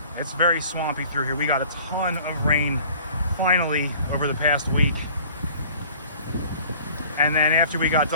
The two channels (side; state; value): both; inverted; correlation -0.50